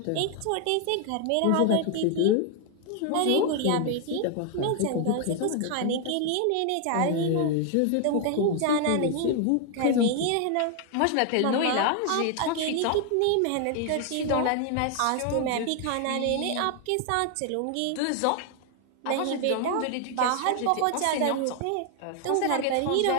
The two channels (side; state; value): both; different; correlation 0.00